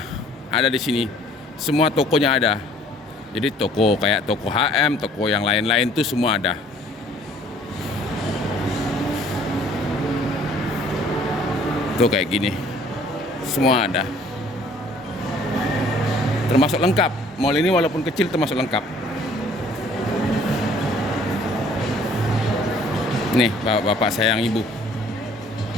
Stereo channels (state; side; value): normal; both; correlation 0.56